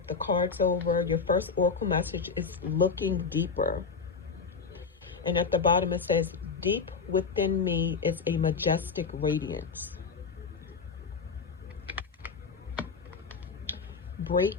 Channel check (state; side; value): quieter; right; 5.2 dB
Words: the cards over. Your first oracle message is looking deeper. And at the bottom it says, deep within me is a majestic radiance.